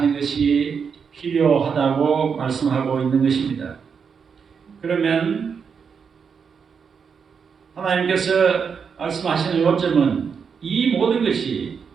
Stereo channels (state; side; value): quieter; left; 6.3 dB